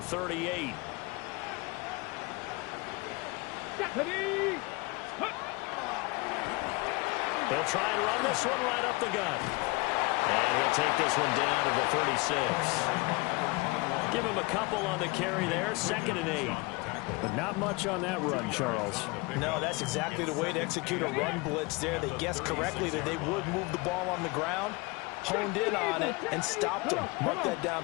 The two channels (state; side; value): quieter; right; 25.8 dB